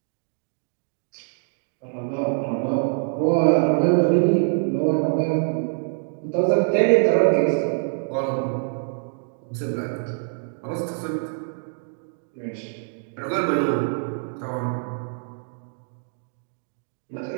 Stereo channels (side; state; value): left; silent; digital silence